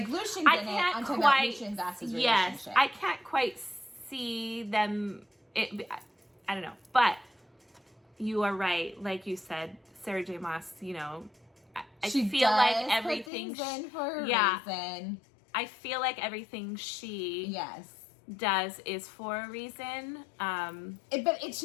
Lucian I didn't. can't I'm talking quite. about Lucien and Vassa's relationship. Yes. I can't quite see them. I don't know. But you are right. Like you said, Sarah J. Maas, you know, I feel like everything. Put things in for a reason. I feel like everything she does is for a reason. But it's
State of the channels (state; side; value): drops out; right; at 13.3 s